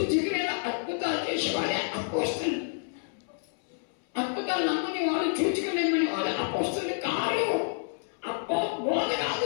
అద్భుతాలు చేసేవాడే అపోస్తలు. అద్భుతాలు నమ్మని వాళ్ళు, చూచుకునేమని వాళ్ళు అపోస్తలు కాదు. బోధ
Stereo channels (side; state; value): right; silent; 59 dB below the other